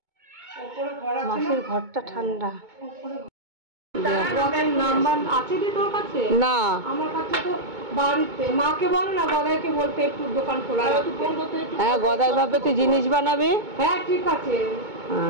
ওপরে ঘর আছে না? মাসির ঘরটা ঠান্ডা। ঘরের নাম্বার আছে কি তোর কাছে? না আমার কাছে তো বাড়িতে। মাকে বল না, গদাইকে বলতে একটু দোকান খোলা রাখতে। হ্যাঁ গদাই ভাবে তুই জিনিস বানাবি। হ্যাঁ ঠিক আছে,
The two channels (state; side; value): late; left; 2.2 ms